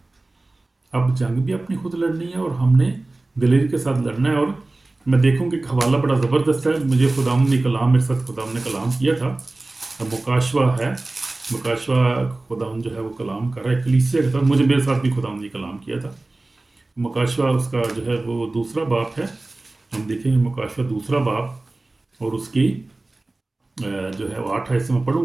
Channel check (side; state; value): left; quieter; 3.0 dB